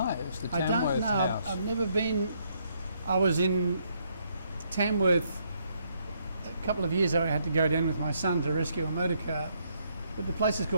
the Tamworth house. I don't know. I've never been. I was in Tamworth a couple of years ago. I had to go down with my son to rescue a motor car. But the place is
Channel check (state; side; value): inverted; both; correlation -0.73